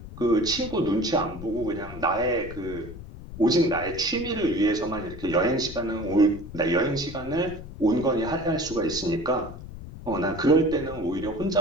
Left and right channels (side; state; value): left; noise; rumble, 13 dB below the sound